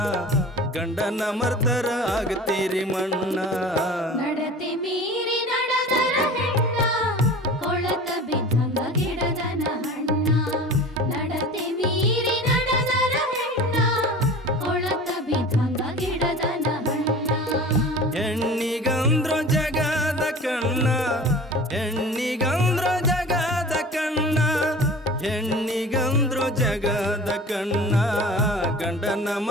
ಗಂಡನ ಮರ್ದರ ಆಗ್ತೀರಿ ಮಣ್ಣ. ನಡತೆ ಮೀರಿ ನಡೆದರ ಹೆಣ್ಣ, ಕೊಳತ ಬಿದ್ದಂಗ ಗಿಡದನ ಹಣ್ಣ. ನಡತೆ ಮೀರಿ ನಡೆದರ ಹೆಣ್ಣ, ಕೊಳತ ಬಿದ್ದಂಗ ಗಿಡದನ ಹಣ್ಣ. ಹೆಣ್ಣಿಗಂದ್ರು ಜಗದ ಕಣ್ಣ, ಹೆಣ್ಣಿಗಂದ್ರು ಜಗದ ಕಣ್ಣ, ಹೆಣ್ಣಿಗಂದ್ರು ಜಗದ ಕಣ್ಣ, ಗಂಡನ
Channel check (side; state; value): both; normal; correlation 0.39